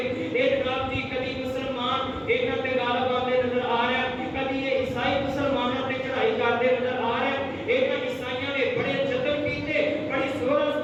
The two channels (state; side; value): identical; both; correlation 1.00